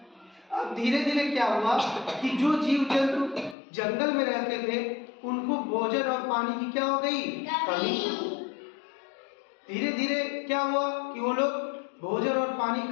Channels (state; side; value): drops out; right; at 3.6 s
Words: अब धीरे धीरे क्या हुआ कि जो जीव जंतु जंगल में रहते थे उनको भोजन और पानी की क्या हो गई, कमी। धीरे धीरे क्या हुआ कि वो लोग भोजन और पानी की